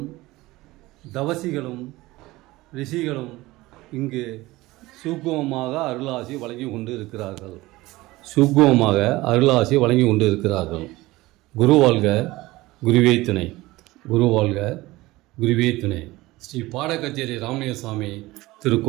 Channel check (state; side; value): quieter; left; 19.3 dB